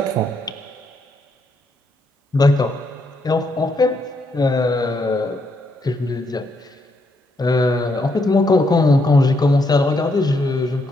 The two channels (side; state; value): both; normal; correlation 0.77